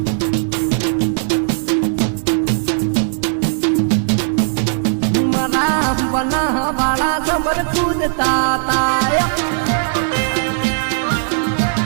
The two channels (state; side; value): silent; left; digital silence